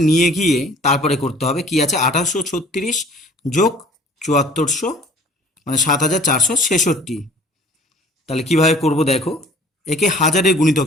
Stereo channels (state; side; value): normal; both; correlation 0.51